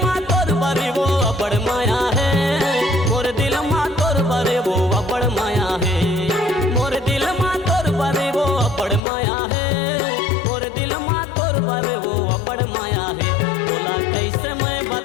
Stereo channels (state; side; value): drops out; right; at 9.0 s